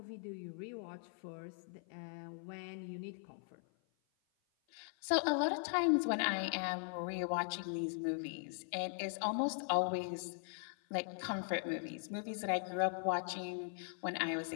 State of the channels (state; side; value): silent; right; 51 dB below the other